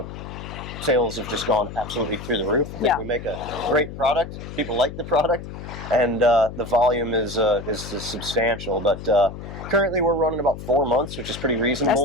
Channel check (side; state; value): left; noise; hum, 10 dB below the sound